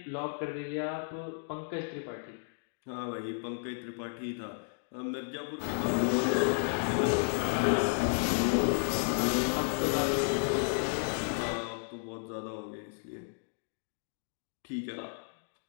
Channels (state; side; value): silent; right; digital silence